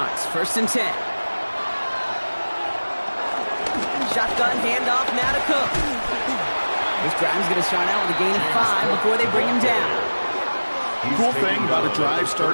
1st and 10. Shotgun handoff now to Cook. This drive's going to start out with a gain of 5 before they bring him down. The cool thing about a drive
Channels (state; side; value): inverted; both; correlation -1.00